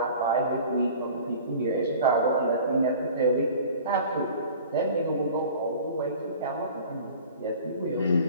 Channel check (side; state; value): both; inverted; correlation -0.44